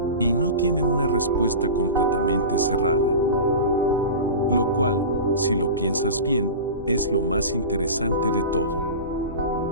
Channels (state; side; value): inverted; both; correlation -0.30